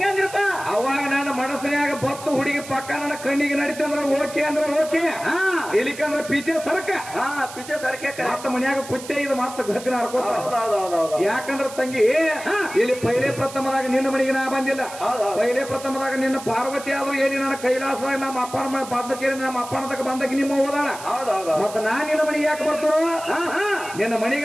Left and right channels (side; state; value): right; noise; hiss, 14 dB below the sound